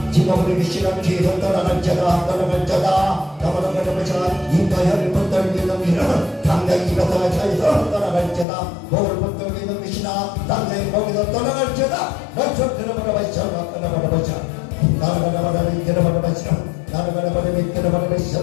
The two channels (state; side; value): drops out; right; at 8.5 s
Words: 지목을 귀신아 뒤에서 떠나갈 자다. 떠나갈 자다. 나라가라 바라바시아. 입과 혀를 붙들고 있는 귀신아 당장히 입에서 차에서 떠나갈 자다. 목을 붙들고 있는 귀신아 당장히 목에서 떠나갈 자다. 나처럼 들어바라바시아. 나라바라바시아. 나라바라바시아.